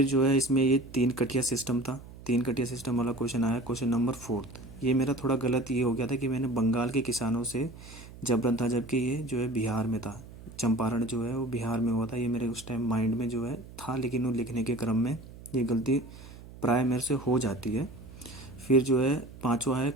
जो है इसमें ये 3 कटिया सिस्टम था। 3 कटिया सिस्टम वाला क्वेश्चन आया, क्वेश्चन नंबर 4। ये मेरा थोड़ा गलत ये हो गया था कि मैंने बंगाल के किसानों से जबरन था, जबकि ये जो है बिहार में था। चंपारण जो है वो बिहार में हुआ था। ये मेरे उस टाइम माइंड में जो है था, लेकिन वो लिखने के क्रम में ये गलती प्राय मेरे से हो जाती है। फिर जो है पांचवा है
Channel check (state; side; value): noise; right; hum, 17 dB below the sound